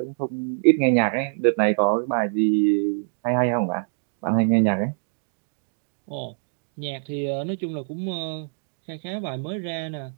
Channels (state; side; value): silent; left; digital silence